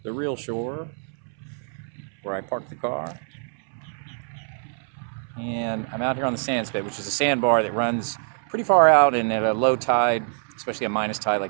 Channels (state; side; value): silent; left; 62 dB below the other